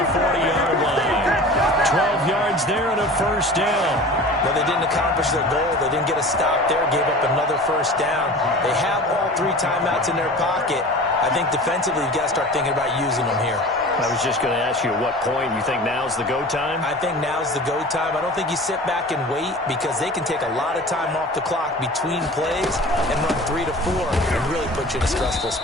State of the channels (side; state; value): both; normal; correlation 0.39